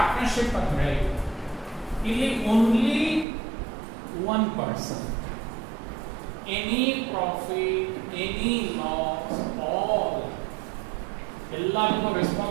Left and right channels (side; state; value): left; drops out; at 3.2 s